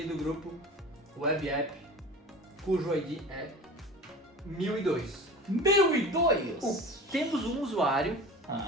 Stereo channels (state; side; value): normal; both; correlation 0.36